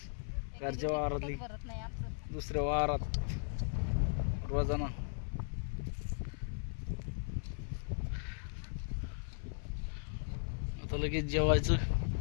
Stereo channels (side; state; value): right; silent; 53 dB below the other